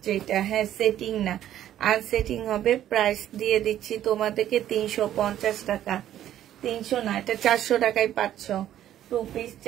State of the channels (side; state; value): left; quieter; 11.7 dB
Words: এটা। হ্যাঁ, সেটিং না, আনসেটিং হবে। প্রাইস দিয়ে দিচ্ছি তোমাদেরকে 350 টাকা। 300 না, এটা 400 টাকায় পাচ্ছ। 2 পিস